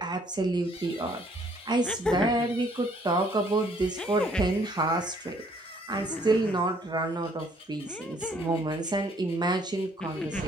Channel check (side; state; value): both; normal; correlation 0.63